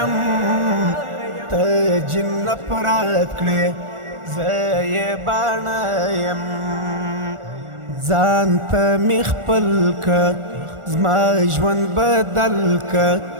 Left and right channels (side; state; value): left; late; 1.4 ms